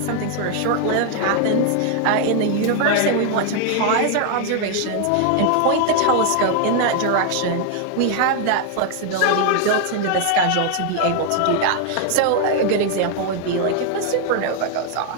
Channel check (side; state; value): both; different; correlation 0.00